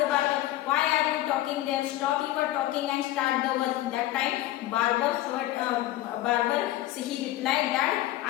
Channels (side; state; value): right; quieter; 15.1 dB